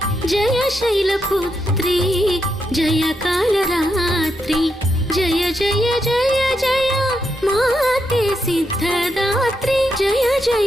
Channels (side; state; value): both; normal; correlation 0.82